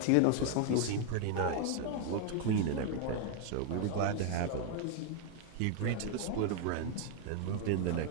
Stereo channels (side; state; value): both; different; correlation 0.00